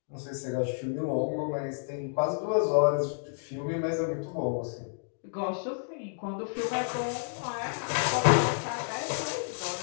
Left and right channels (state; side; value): silent; right; digital silence